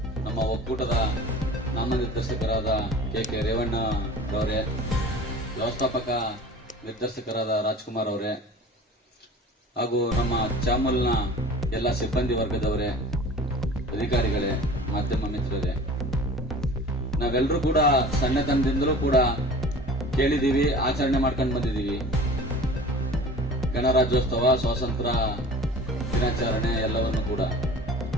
ನಮ್ಮ ಒಕ್ಕೂಟದ ನಾಮನಿರ್ದೇಶಕರಾದ ಕೆ ರೇವಣ್ಣರವರೇ, ವ್ಯವಸ್ಥಾಪಕ ನಿರ್ದೇಶಕರಾದ ರಾಜ್ಕುಮಾರ್ ಅವರೇ, ಹಾಗೂ ನಮ್ಮ ಚಾಮಲ್ನ ಎಲ್ಲ ಸಿಬ್ಬಂದಿ ವರ್ಗದವರೇ, ಅಧಿಕಾರಿಗಳೇ, ಮಾಧ್ಯಮ ಮಿತ್ರರೇ, ನಾವೆಲ್ಲರೂ ಕೂಡ ಸಣ್ಣತನದಿಂದಲೂ ಕೂಡ ಕೇಳಿದೀವಿ, ಆಚರಣೆ ಮಾಡ್ಕೊಂಡು ಬಂದಿದ್ದೀವಿ. ಗಣರಾಜ್ಯೋತ್ಸವ, ಸ್ವಾತಂತ್ರ್ಯ ದಿನಾಚರಣೆ ಎಲ್ಲವನ್ನು ಕೂಡ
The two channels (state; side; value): normal; both; correlation 0.41